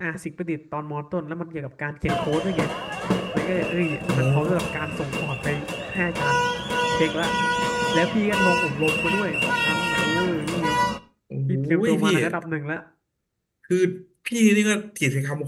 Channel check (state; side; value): identical; both; correlation 1.00